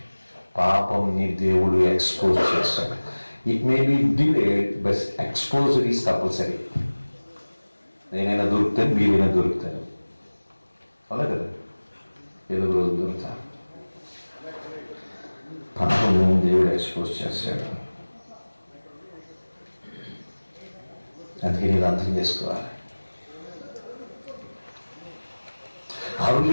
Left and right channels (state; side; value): inverted; both; correlation -1.00